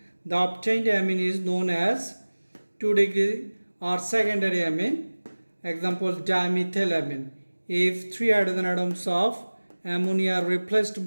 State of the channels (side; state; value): both; inverted; correlation -1.00